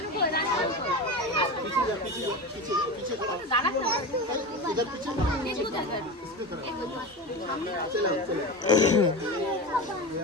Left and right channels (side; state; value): both; normal; correlation 0.25